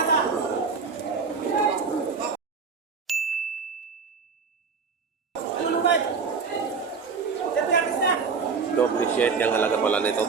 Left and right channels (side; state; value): left; quieter; 5.2 dB